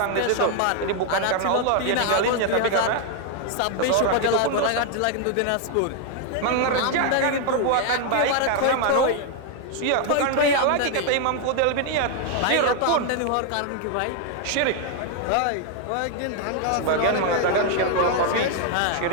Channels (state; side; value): different; both; correlation 0.00